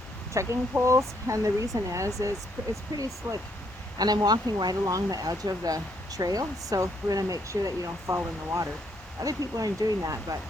trekking poles, and the reason is it's pretty slick. And I'm walking right along the edge of the trail, so we're going to make sure that you don't fall in the water. Other people aren't doing that, but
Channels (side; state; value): both; normal; correlation 0.72